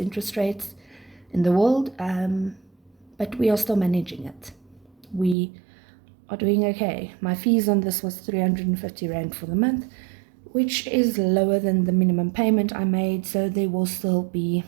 rates in the world, but we are still managing it. We are doing okay. My fees on this was 350 Rand for the month, which is lower than the minimum payment I made, so there will still be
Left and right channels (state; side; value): drops out; left; at 5.4 s